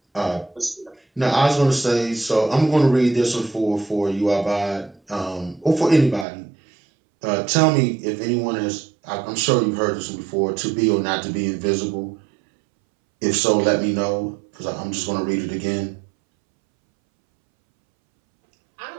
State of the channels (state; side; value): drops out; left; at 6.2 s